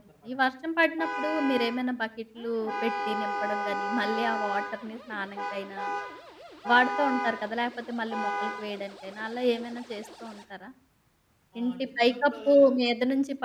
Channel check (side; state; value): both; identical; correlation 1.00